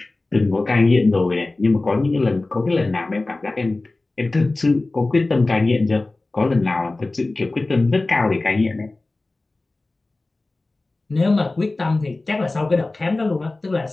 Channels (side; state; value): right; quieter; 3.1 dB